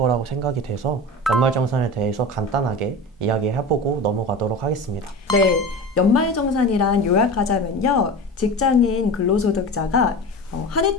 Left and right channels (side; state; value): both; normal; correlation 0.30